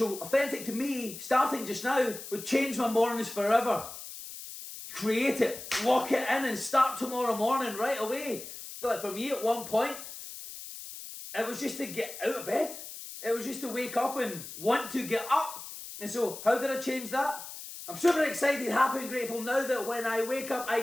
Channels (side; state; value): left; noise; hiss, 11 dB below the sound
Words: authentic to me, starting just now, would change my mornings forever? Create it, lock it in and start tomorrow morning right away. Like for me at one point, it was just to get out of bed. It was just to wake up and want to get up. And so how did I change that? I'm super excited, happy and grateful now that when I wake up, I